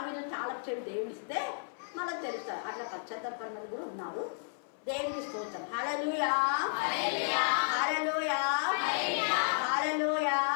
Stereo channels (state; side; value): silent; right; 56 dB below the other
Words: తాళం చెవి దేవుడిస్తే మళ్ళీ తెలుస్తారు. అట్లా పశ్చాత్తాపడిన కూడా ఉన్నారు. దేవుడికి స్తోత్రం. హల్లెలూయా, హల్లెలూయా, హల్లెలూయా.